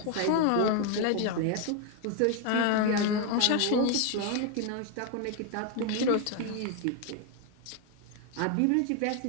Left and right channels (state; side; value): different; both; correlation 0.01